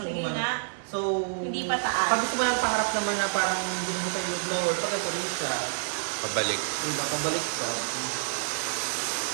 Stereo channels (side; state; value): left; silent; digital silence